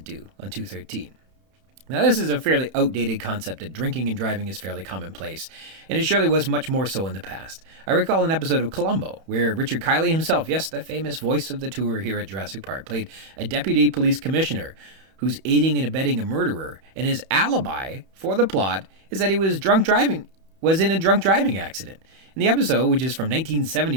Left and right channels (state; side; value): late; left; 31 ms